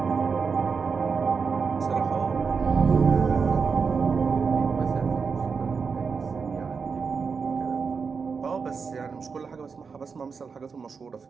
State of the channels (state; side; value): quieter; left; 5.4 dB